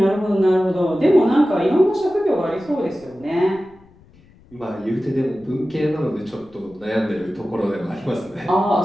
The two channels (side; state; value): left; noise; rumble, 27 dB below the sound